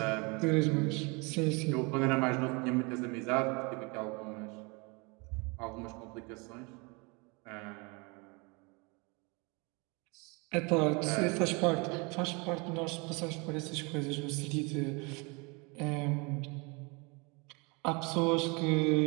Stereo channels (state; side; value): quieter; left; 29.4 dB